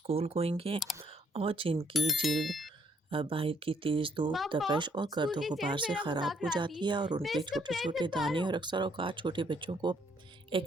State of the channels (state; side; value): normal; both; correlation 0.68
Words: گوئنگ ہیں اور جن کی جلد باہر کی تیز دھوپ، پاپا تپش اور اسکول گرد و کی غبار سیر سے میرا خراب مذاق ہو اڑاتی، جاتی ہے اور ان میں کے اس کا چھوٹے پلیٹ چھوٹے نہیں پا دانے رہا اور ہوں۔ اکثر اوقات چھوٹے بچوں کو